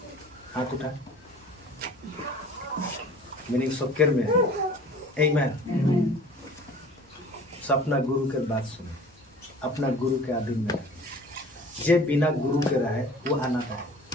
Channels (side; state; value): both; normal; correlation 0.45